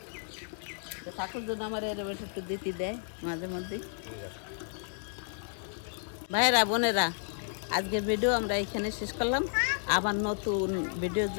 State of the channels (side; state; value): right; silent; 56 dB below the other